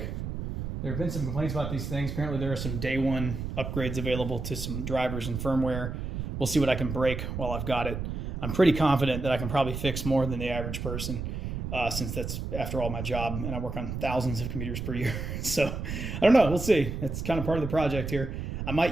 There have been some complaints about these things. Apparently there are some day one upgrades available to some drivers and firmware. We'll see what I can break while I've got it. I'm pretty confident that I can probably fix more than the average person since that's, after all, my job, and I work on thousands of computers per year. So I don't know. We'll see. It's kind of part of the project here. I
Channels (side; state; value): right; noise; rumble, 5 dB below the sound